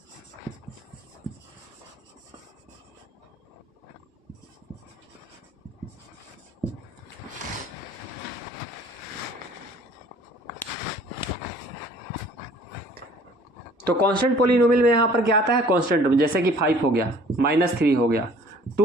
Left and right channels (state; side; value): normal; both; correlation 0.53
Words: तो कांस्टेंट पॉलिनोमियल में यहां पर क्या आता है? कांस्टेंट, जैसे कि 5 हो गया, -3 हो गया,